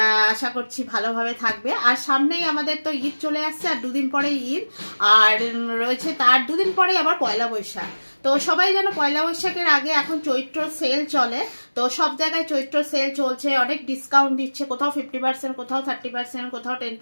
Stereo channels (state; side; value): inverted; both; correlation -1.00